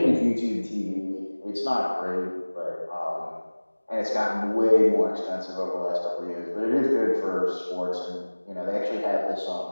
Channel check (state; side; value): inverted; both; correlation -1.00